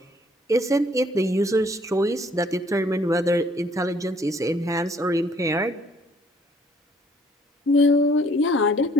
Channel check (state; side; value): normal; both; correlation 0.61